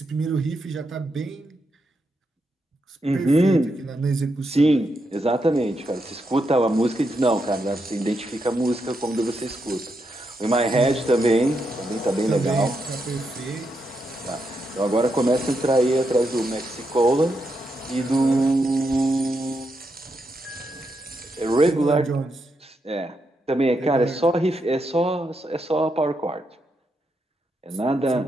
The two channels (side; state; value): both; normal; correlation 0.82